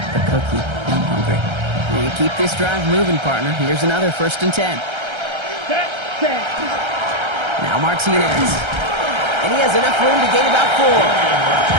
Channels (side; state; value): left; late; 1.3 ms